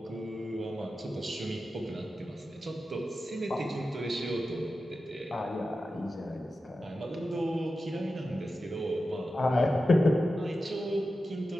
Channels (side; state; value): both; normal; correlation 0.92